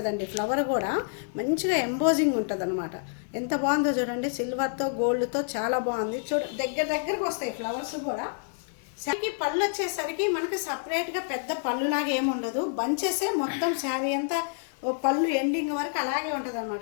ఫ్లవర్ కూడా మంచిగా ఎంబోజింగ్ ఉంటుంది అనమాట. ఎంత బాగుందో చూడండి. సిల్వర్తో గోల్డ్తో చాలా బాగుంది. దగ్గరకు వస్తాయి ఫ్లవర్స్ కూడా. శారీకి పళ్ళు వచ్చేసరికి మనకి సపరేట్గా పెద్ద పళ్ళులాగా ఏముండదు, బంచెసే మొత్తం శారీ అంతా పళ్ళు ఎండింగ్ వరకు అలాగే ఉంటుంది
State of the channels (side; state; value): right; silent; digital silence